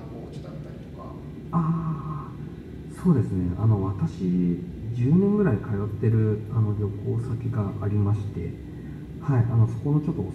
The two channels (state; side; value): identical; both; correlation 1.00